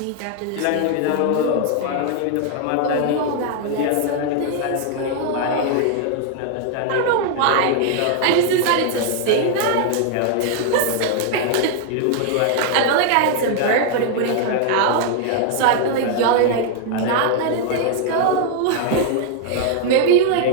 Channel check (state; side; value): different; both; correlation 0.00